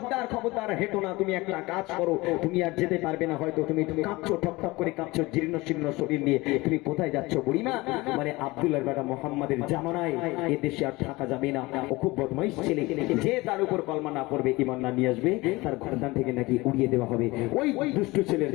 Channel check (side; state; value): right; quieter; 21.8 dB